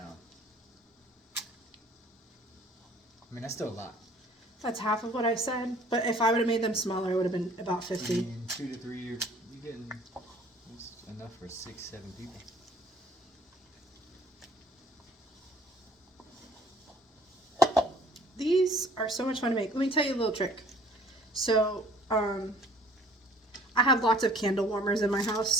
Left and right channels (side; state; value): both; normal; correlation 0.54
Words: I mean, that's still a lot. That's half of what I said, but if I would have made them smaller, it would have been about 50. I mean, 2 to 3, you're getting that's enough for 6, 7 people. these are so much fun to make. Let me tell you a little trick. So, I have lots of candle warmers in my